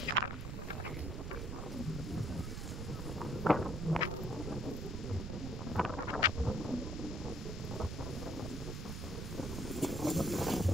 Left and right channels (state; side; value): noise; right; rumble, 5 dB below the sound